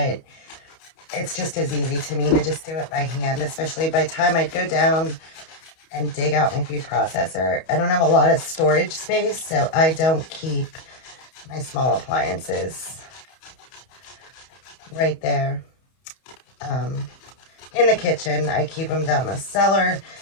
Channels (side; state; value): right; late; 31 ms